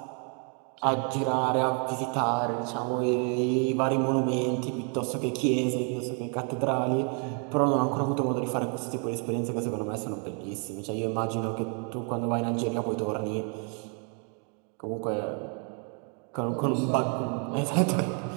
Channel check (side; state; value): left; quieter; 39.3 dB